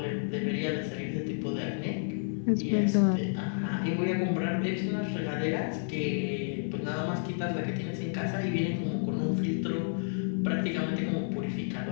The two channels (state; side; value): silent; right; 57 dB below the other